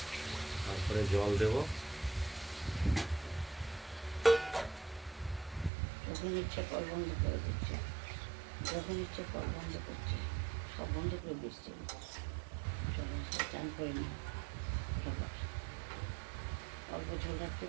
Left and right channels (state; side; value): drops out; left; at 5.7 s